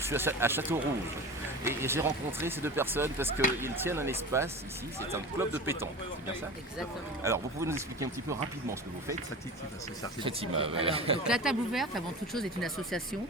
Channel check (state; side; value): normal; both; correlation 0.33